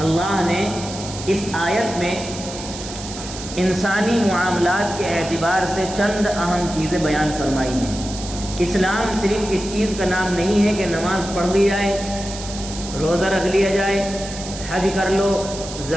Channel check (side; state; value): right; noise; hiss, 11 dB below the sound